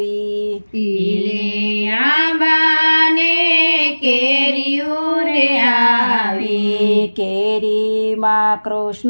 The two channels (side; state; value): both; inverted; correlation -1.00